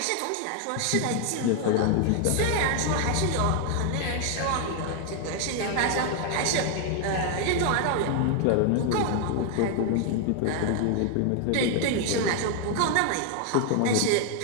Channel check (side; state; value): both; different; correlation 0.00